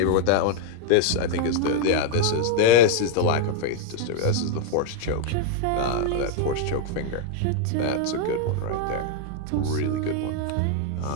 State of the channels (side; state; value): both; different; correlation 0.01